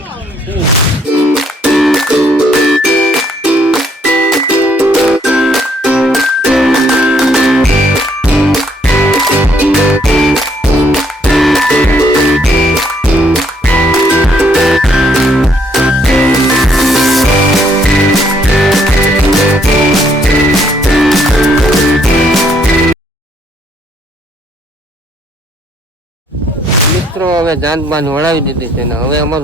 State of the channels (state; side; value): normal; both; correlation 0.68